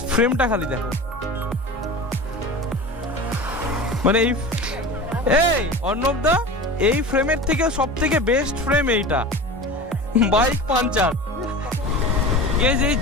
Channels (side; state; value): both; normal; correlation 0.33